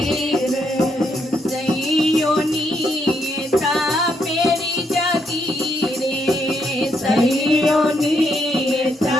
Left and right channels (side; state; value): both; normal; correlation 0.76